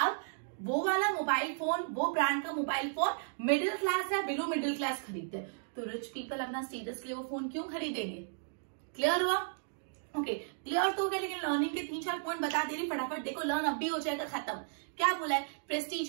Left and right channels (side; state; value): left; silent; digital silence